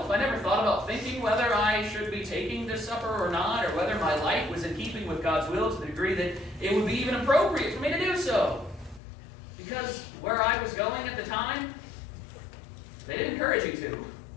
I never thought about thinking whether I should be taking this supper or not, or whether my life was in keeping with God's will to the degree that it would be even appropriate for me to do so. Because where I was going at the time, they didn't encourage you to.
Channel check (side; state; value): right; drops out; at 9.0 s